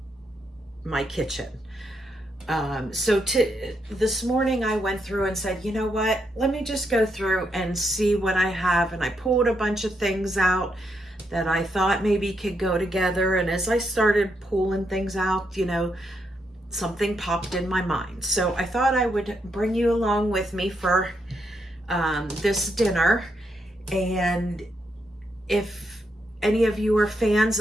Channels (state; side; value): normal; both; correlation 0.80